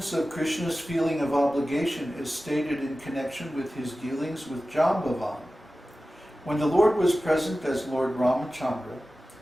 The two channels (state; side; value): normal; both; correlation 0.95